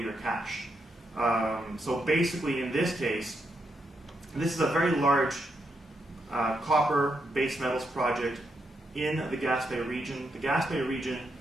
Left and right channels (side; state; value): both; normal; correlation 0.81